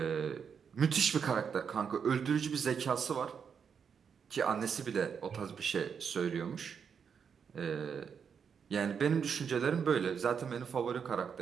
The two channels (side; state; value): left; quieter; 6.8 dB